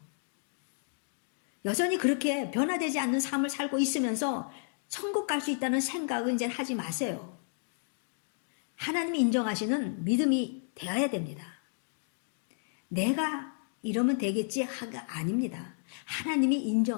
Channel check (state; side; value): silent; right; 56 dB below the other